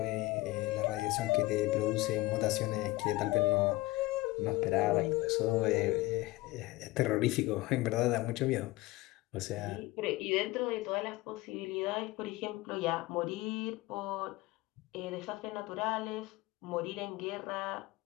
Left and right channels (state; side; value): quieter; right; 20.2 dB